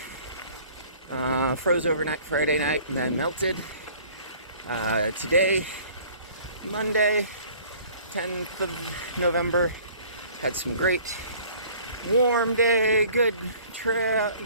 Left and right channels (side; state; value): both; inverted; correlation -0.52